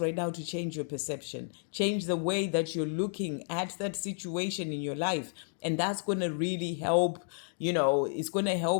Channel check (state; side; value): silent; right; digital silence